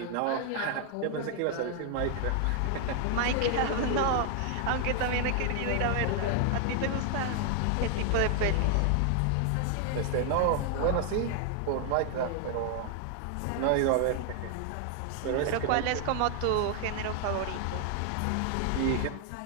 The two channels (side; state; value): both; different; correlation 0.00